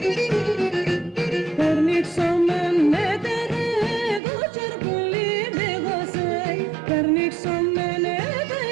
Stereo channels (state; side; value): drops out; left; at 4.2 s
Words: Περνίξομεν έτερε το τσαρπουλί δίγωσε, περνίξομεν